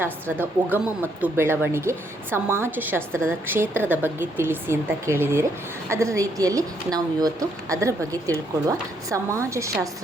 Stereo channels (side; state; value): both; normal; correlation 0.72